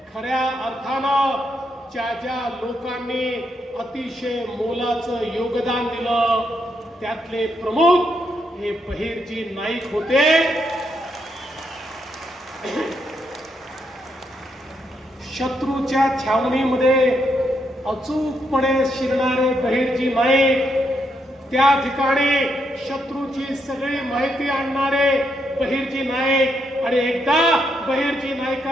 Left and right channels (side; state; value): both; normal; correlation 0.79